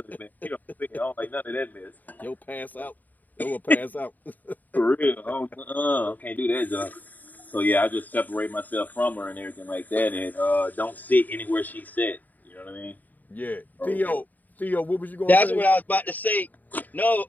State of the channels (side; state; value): right; late; 0.083 ms